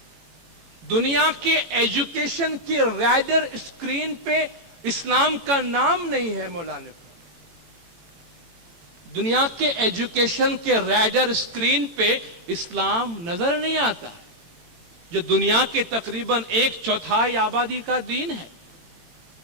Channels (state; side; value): late; left; 18 ms